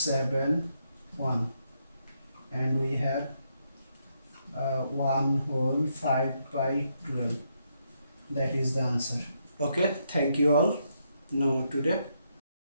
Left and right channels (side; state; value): both; inverted; correlation -0.78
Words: 1, and we have 1 whole 5 by 12. That is the answer. Okay, thank you all. Now today